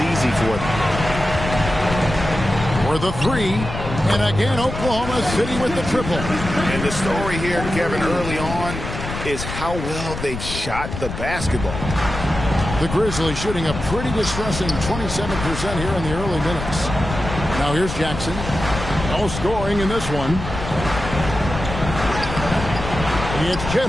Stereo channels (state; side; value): noise; left; rumble, 7 dB below the sound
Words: easy for them. For the 3. And again, Oklahoma City with the triple. And the story here, Kevin, early on is how well they've shot the basketball. The Grizzlies shooting a pretty distressing 27% here in the early minutes. Now here's Jackson. No scoring in this one. It's Chet